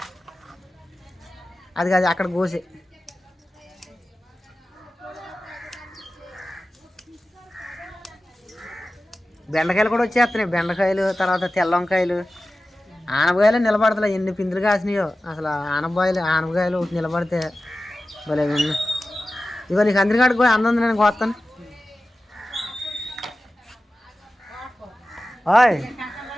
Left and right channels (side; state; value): both; normal; correlation 0.95